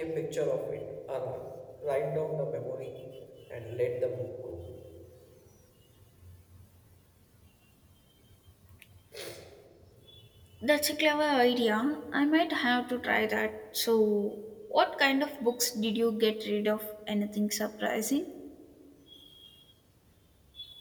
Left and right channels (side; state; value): both; identical; correlation 1.00